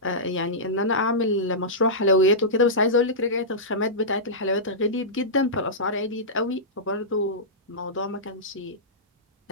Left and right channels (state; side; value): normal; both; correlation -0.15